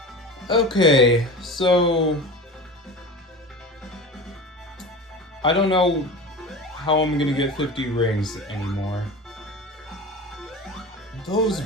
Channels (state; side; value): normal; both; correlation 0.32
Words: Okay, so... I don't know how I'm gonna get 50 rings anymore. Those